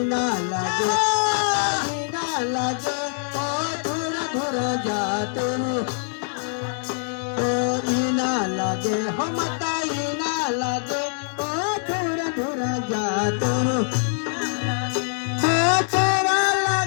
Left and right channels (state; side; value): silent; right; digital silence